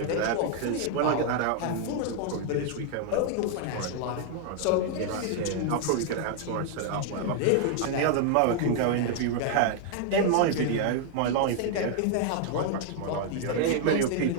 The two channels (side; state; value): both; different; correlation 0.00